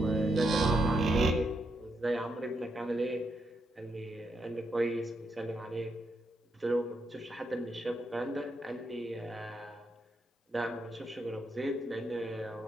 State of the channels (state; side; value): normal; both; correlation 0.81